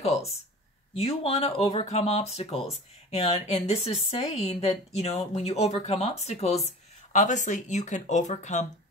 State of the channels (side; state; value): both; normal; correlation 0.38